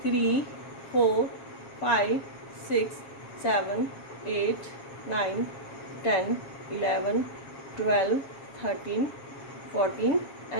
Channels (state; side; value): late; right; 7.3 ms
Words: 3 4 5 6 7 8 9 10 11 12 13 14